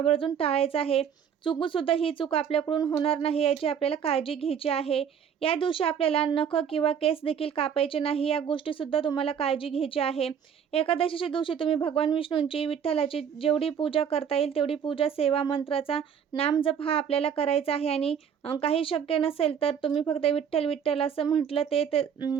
टाळायचं आहे. चुकूनसुद्धा ही चूक आपल्याकडून होणार नाही याची आपल्याला काळजी घ्यायची आहे. या दिवशी आपल्याला नख किंवा केस देखील कापायचे नाही. या गोष्टीसुद्धा तुम्हाला काळजी घ्यायची आहे. एकादशीच्या दिवशी तुम्ही भगवान विष्णूंची, विठ्ठलाची जेवढी पूजा करता येईल तेवढी पूजा, सेवा, मंत्राचा नामजप हा आपल्याला करायचा आहे. आणि काही शक्य नसेल तर तुम्ही फक्त विठ्ठल विठ्ठल असं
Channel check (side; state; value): left; quieter; 7.9 dB